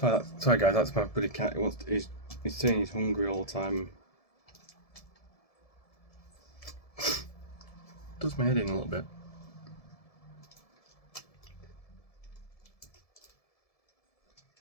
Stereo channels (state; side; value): late; right; 1.7 ms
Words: Sorry guys, that's my bloody cat. He's saying he's hungry all the time. Does my head in a little bit.